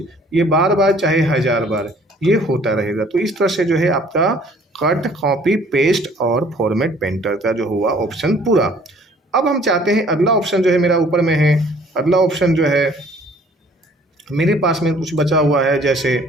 ये बार बार चाहे 1000 बार ये होता रहेगा। तो इस तरह से जो है आपका कट, कॉपी, पेस्ट और फॉर्मेट पेंटर का जो हुआ ऑप्शन पूरा। अब हम चाहते हैं अगला ऑप्शन जो है मेरा ऊपर में है, अगला ऑप्शन जो है मेरे पास में कुछ बचा हुआ है, जैसे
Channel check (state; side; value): normal; both; correlation 0.56